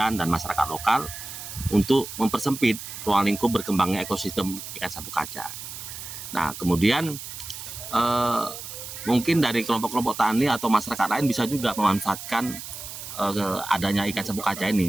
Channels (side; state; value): right; noise; hiss, 10 dB below the sound